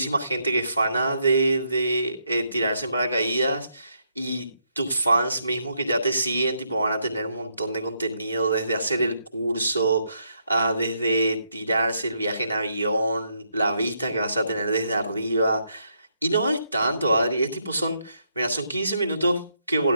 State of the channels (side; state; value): both; inverted; correlation -0.76